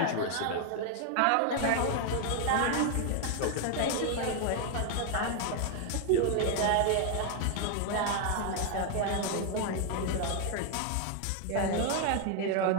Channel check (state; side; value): different; both; correlation 0.01